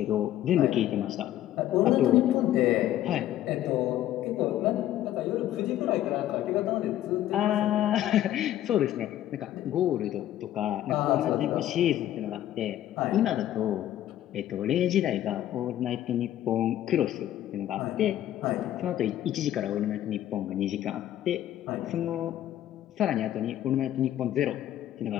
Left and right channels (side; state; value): right; quieter; 12.7 dB